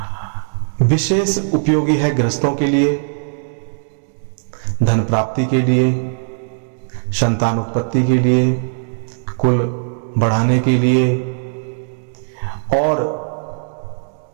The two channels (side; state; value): left; silent; digital silence